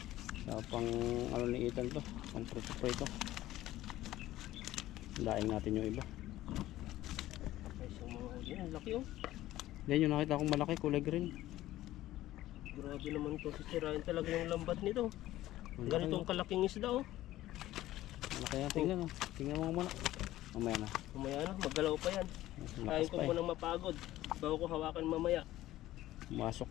Sa pang ano ni Ethan to. Pang prito-prito. Laing natin yung iba. Ay, so mga huli. Ang laki oh. Yan yung nakita kong malaki, kulay green. Grabe naman to. Sisirain talaga yung lambat nito. Ang laki, Ganitong kalaking isda oh. malaki yan. Tingnan mo. Tingnan mo muna. Mamaya na. Mamaya na, maggalaw pa yan. Kain Lakas ko pa eh. munang mapagod. Bago ko hawakan mamaya. Masok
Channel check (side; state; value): right; quieter; 15.1 dB